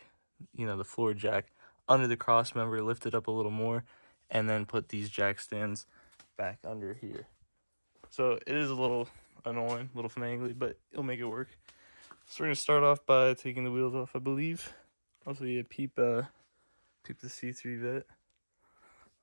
the floor jack, under the Crossmember, lift it up a little more, and then put these jack stands back under here. So it is a little annoying, a little finagly, but it'll make it work. So we're gonna start off by taking the wheels off, I believe. Also, peep the C3 vet.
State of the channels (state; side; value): inverted; both; correlation -1.00